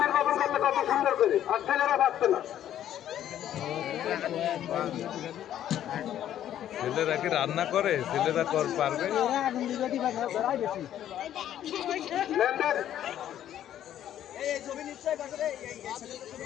নির্বাপন করলে কত সুন্দর করে আর ছেলেরা পাচ্ছে না ছেলেরা কি রান্না করে ছেলেরা পারবে লেনদেন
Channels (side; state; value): right; quieter; 11.2 dB